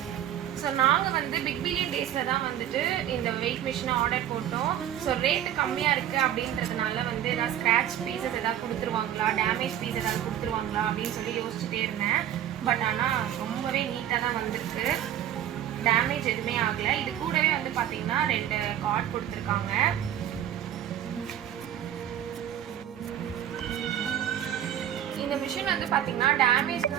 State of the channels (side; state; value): left; quieter; 10.9 dB